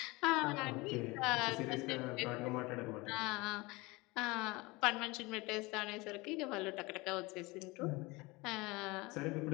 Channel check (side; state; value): right; quieter; 23.7 dB